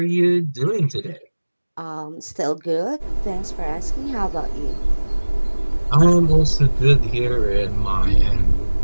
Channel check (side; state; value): both; inverted; correlation -1.00